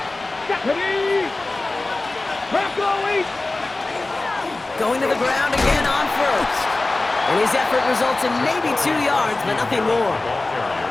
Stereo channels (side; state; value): right; quieter; 3.1 dB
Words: Ready. Going to the ground again on 1st. And his effort results in maybe 2 yards, but nothing more.